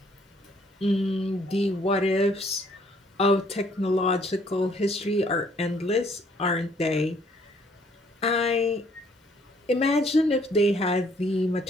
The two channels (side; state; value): both; normal; correlation 0.64